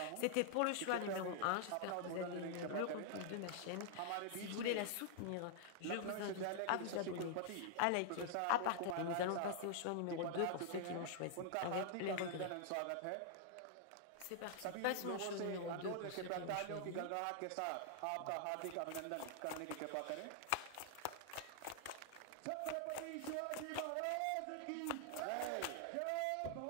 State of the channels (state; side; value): different; both; correlation -0.01